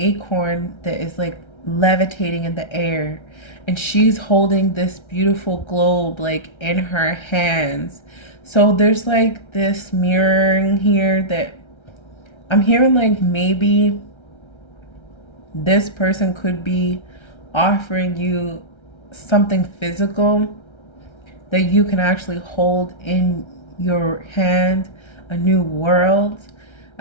that is like levitating in the air, and she's holding this beautiful globe like in her hands. So there's like this mirroring here that I'm hearing, like maybe this person could be offering you something physical that you can actually hold in your hand, a new world.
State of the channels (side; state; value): right; late; 1.3 ms